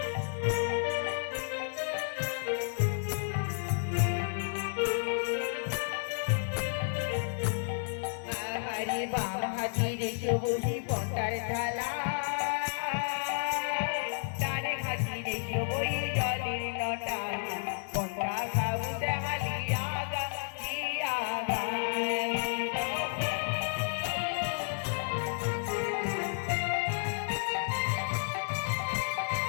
হরে বাম হাতির শুভহি পন্থার থালা ডানে হাতির শুভহি জলের নটা পন্থা খাবুতে হালিয়া গা দিয়া গা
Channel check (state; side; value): silent; right; digital silence